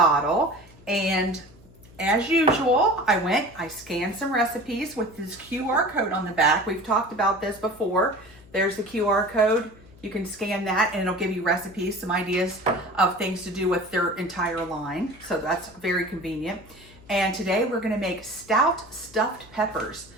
And as usual, I scanned some recipes with this QR code on the back. We've talked about this before. There's the QR code. You can scan that and it'll give you recipes, some ideas of things to do with their entire line. So that's very convenient. And today we're gonna make stout stuffed peppers.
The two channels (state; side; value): noise; left; hum, 24 dB below the sound